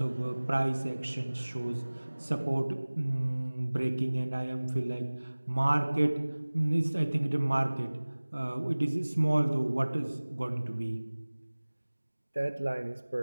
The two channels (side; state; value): both; inverted; correlation -1.00